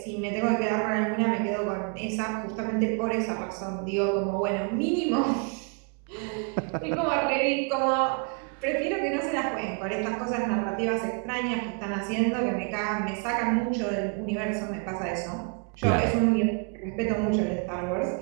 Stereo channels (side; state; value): left; quieter; 37.8 dB